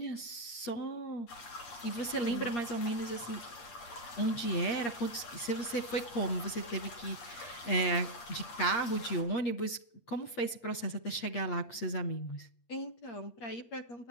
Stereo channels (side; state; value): right; late; 8.5 ms